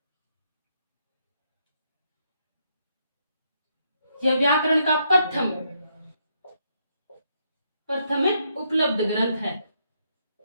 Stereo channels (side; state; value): both; inverted; correlation -0.76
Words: यह व्याकरण का प्रथम उपलब्ध ग्रंथ